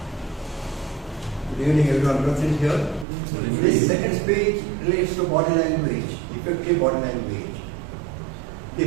Good evening everyone present here. This second speech relates to body language, effective body language. The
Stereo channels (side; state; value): left; drops out; at 3.1 s